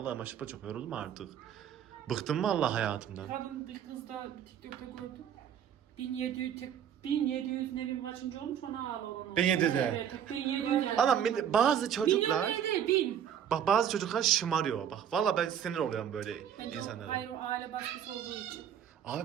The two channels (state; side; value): quieter; left; 9.1 dB